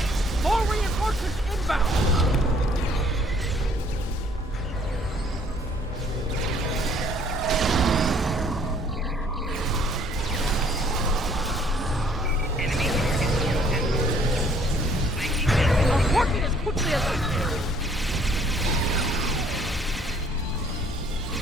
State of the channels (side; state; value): both; normal; correlation 0.60